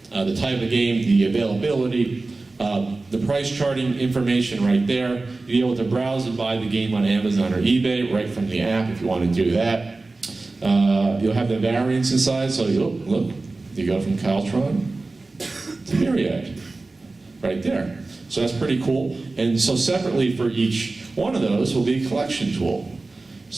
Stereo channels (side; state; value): left; quieter; 3.4 dB